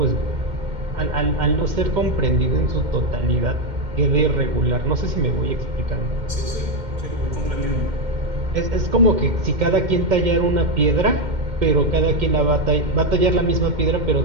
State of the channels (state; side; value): late; left; 2.1 ms